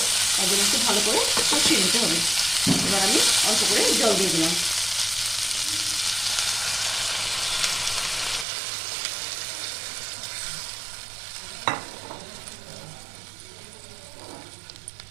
তার জন্য একটু ভালো করে কষিয়ে নিতে হবে। এবার আমি অল্প করে জল দিয়ে দিলাম।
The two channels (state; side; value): drops out; left; at 8.5 s